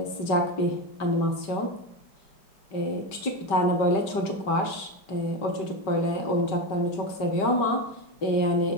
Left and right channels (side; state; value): right; late; 5.2 ms